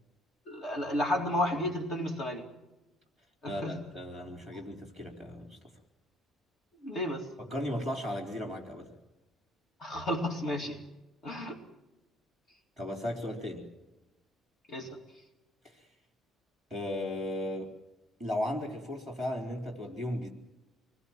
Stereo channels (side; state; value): both; normal; correlation 0.63